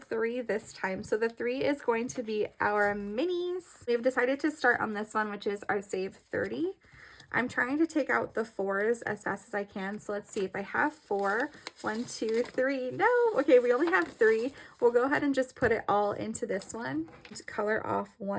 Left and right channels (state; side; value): identical; both; correlation 1.00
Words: this time. So the 3 is going to be our minis. We've decided to start on this one, which is our save 30. I'm trying to take out the 4s as fast as I can. So let's see if I have 4. 1, 2, 3. No. Okay, we only have 3. We'll go ahead and just put it all into this one. Just color off